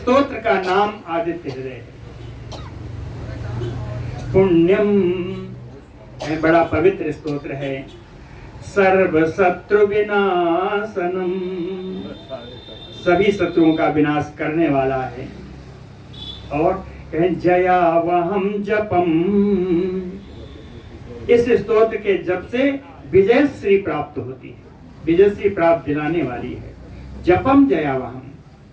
का नाम आदित्य हृदय है। पुण्यम बड़ा पवित्र स्तोत्र है। सर्व शत्रु विनाशनम, सभी शत्रुओं का विनाश करने वाला है। और कहें जयावहम जपम, इस स्तोत्र के जप से विजय श्री प्राप्त होती है, विजय श्री प्राप्त दिलाने वाली है। जपम जयावहम,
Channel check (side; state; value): both; identical; correlation 1.00